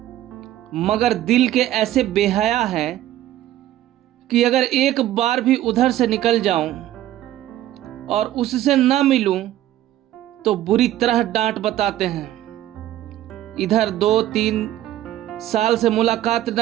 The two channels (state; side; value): quieter; left; 13.3 dB